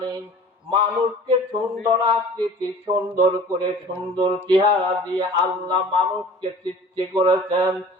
মানুষকে সুন্দর আকৃতি, সুন্দর করে সুন্দর চেহারা দিয়ে আল্লাহ মানুষকে সৃষ্টি করেছেন,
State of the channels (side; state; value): both; normal; correlation 0.44